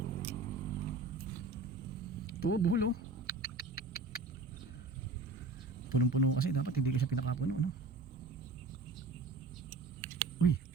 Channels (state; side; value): quieter; left; 3.6 dB